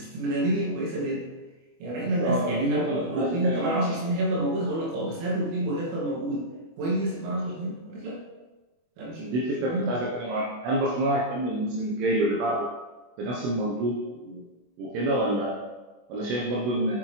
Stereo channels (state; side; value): late; left; 24 ms